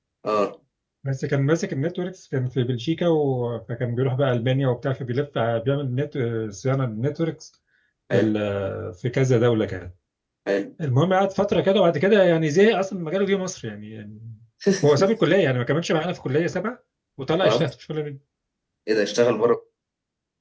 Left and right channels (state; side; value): identical; both; correlation 1.00